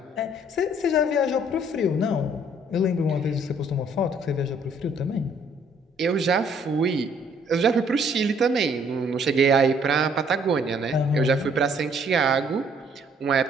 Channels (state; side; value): normal; both; correlation 0.62